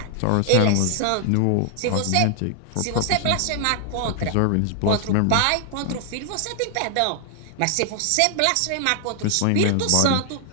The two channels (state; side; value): different; both; correlation 0.00